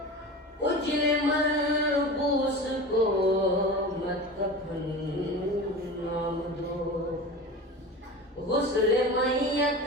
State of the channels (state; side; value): normal; both; correlation 0.32